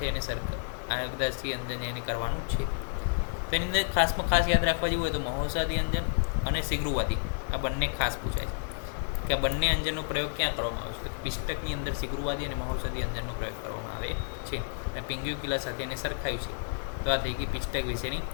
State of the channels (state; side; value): silent; right; digital silence